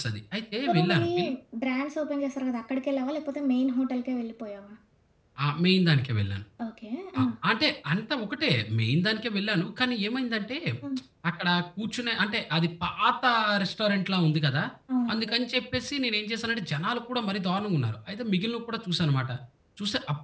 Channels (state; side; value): identical; both; correlation 1.00